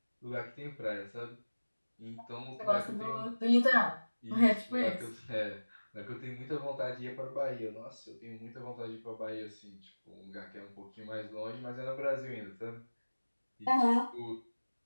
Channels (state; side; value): inverted; both; correlation -1.00